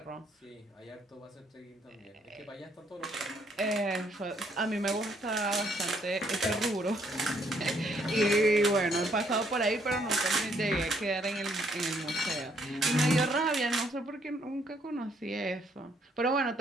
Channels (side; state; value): both; normal; correlation 0.69